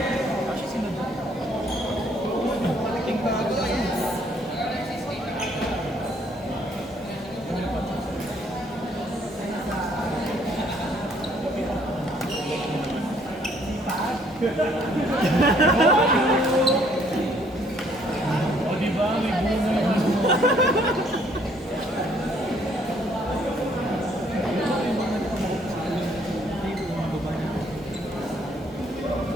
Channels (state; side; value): normal; both; correlation 0.64